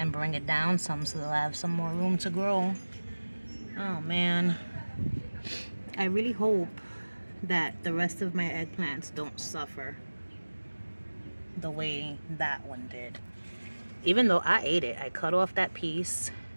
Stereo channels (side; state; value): both; inverted; correlation -1.00